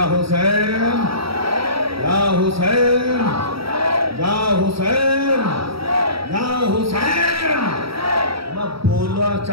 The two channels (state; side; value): late; left; 0.75 ms